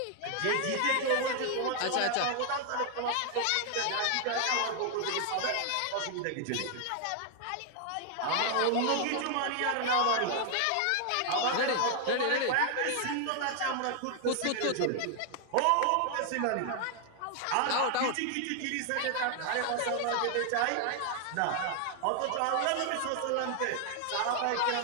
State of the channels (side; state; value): both; different; correlation 0.00